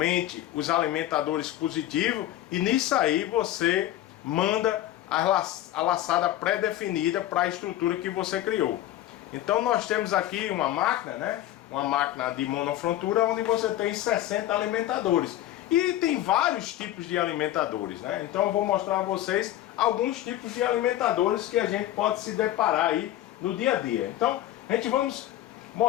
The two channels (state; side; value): quieter; right; 13.6 dB